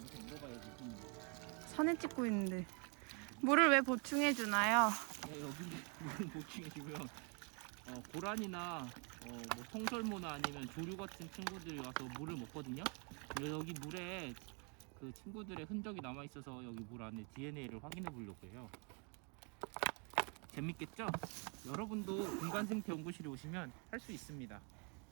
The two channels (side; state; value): left; quieter; 35.7 dB